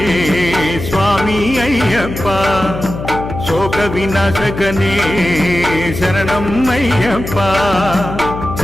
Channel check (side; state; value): left; noise; hum, 8 dB below the sound